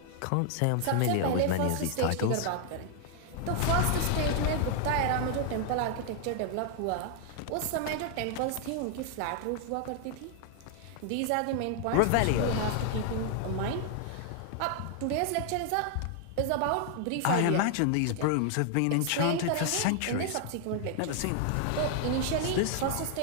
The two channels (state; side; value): different; both; correlation 0.00